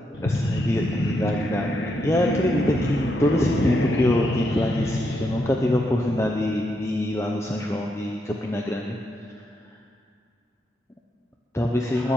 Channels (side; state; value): both; normal; correlation 0.80